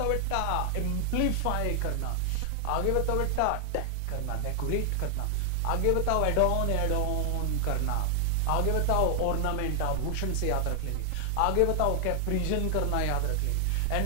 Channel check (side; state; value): both; different; correlation 0.00